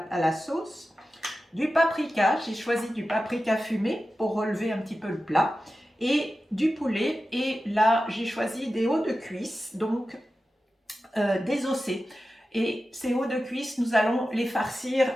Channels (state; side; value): normal; both; correlation 0.93